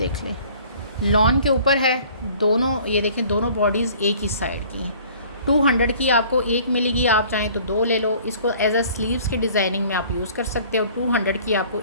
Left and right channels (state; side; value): inverted; both; correlation -0.52